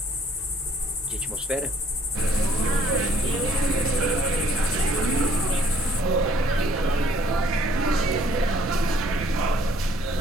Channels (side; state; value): both; normal; correlation 0.61